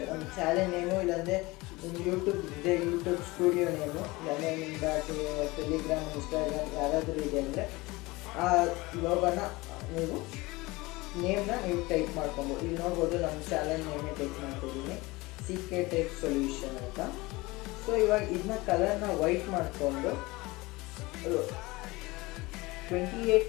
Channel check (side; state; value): right; quieter; 22.0 dB